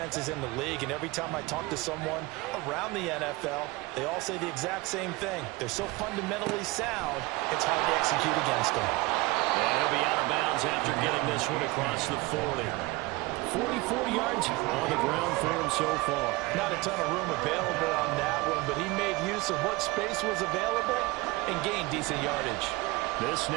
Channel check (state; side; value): quieter; left; 22.3 dB